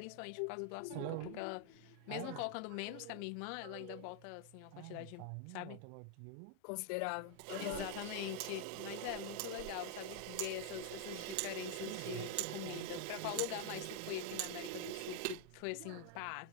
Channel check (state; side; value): different; both; correlation 0.00